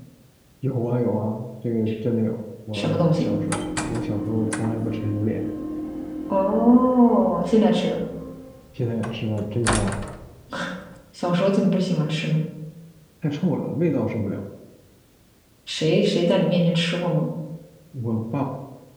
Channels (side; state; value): both; identical; correlation 1.00